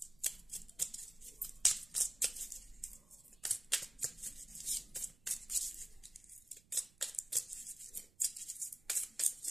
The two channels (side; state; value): right; noise; rumble, 28 dB below the sound